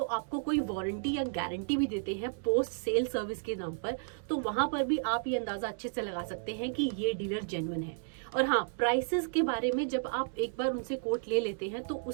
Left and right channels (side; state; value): left; silent; digital silence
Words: आपको कोई वारंटी या गारंटी भी देते हैं पोस्ट सेल सर्विस के नाम पर, तो वहां पर भी आप ये अंदाजा अच्छे से लगा सकते हैं कि ये डीलर जेन्युइन है। और हाँ, प्राइसेस के बारे में जब आप एक बार उनसे कोट ले लेते हैं तो